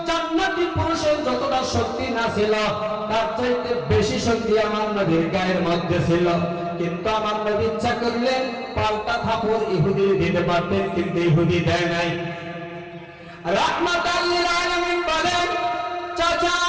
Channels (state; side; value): identical; both; correlation 1.00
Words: জান্নাতি পুরুষের যতটা শক্তি না ছিল তার চাইতে বেশি শক্তি আমার নবীর গায়ের মধ্যে ছিল। কিন্তু আমার নবী ইচ্ছা করলে পাল্টা থাপড় ইহুদি দিতে পারতেন, কিন্তু ইহুদি দেয় নাই। রাহমাতাল লিল আলামিন বলেন, চাচা